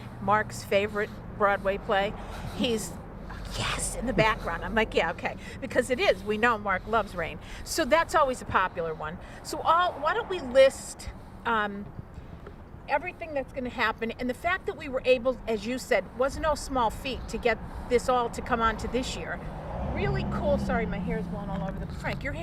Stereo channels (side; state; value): both; identical; correlation 1.00